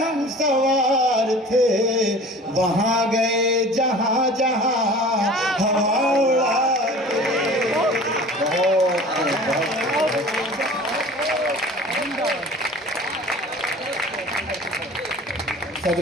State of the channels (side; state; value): both; normal; correlation 0.43